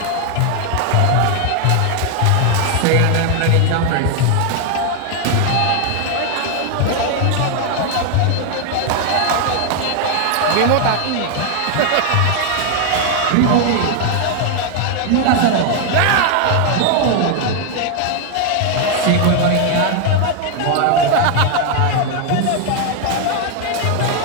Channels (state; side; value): different; both; correlation 0.00